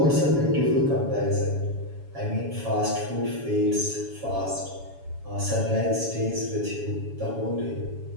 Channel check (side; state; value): left; late; 7.1 ms